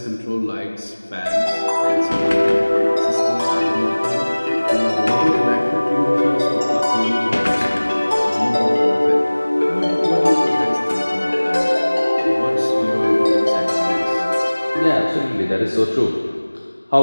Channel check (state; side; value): inverted; both; correlation -1.00